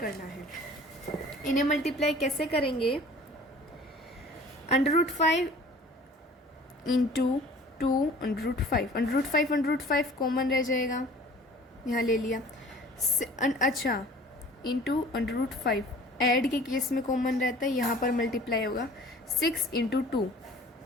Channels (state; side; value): normal; both; correlation 0.48